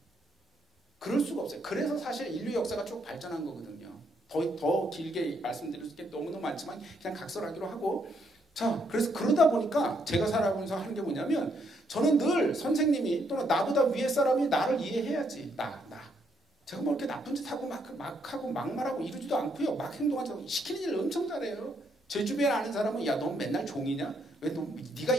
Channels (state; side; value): normal; both; correlation 0.74